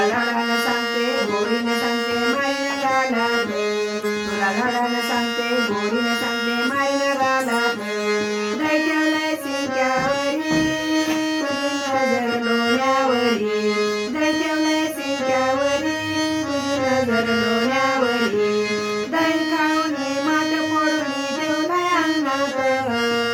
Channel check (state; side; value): identical; both; correlation 1.00